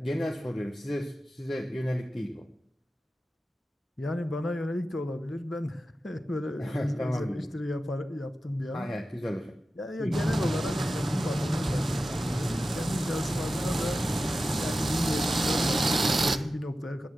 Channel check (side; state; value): both; normal; correlation 0.93